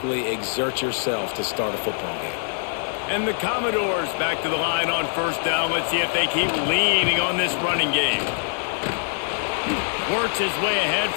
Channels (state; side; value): silent; right; 59 dB below the other